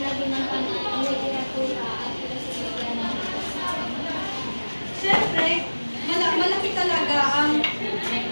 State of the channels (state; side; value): inverted; both; correlation -1.00